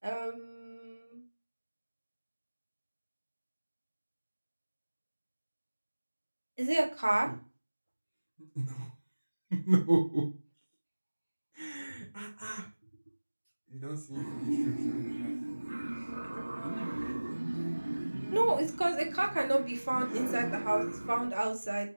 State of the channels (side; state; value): both; inverted; correlation -1.00